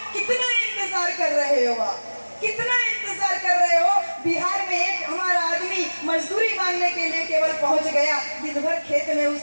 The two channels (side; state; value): both; inverted; correlation -1.00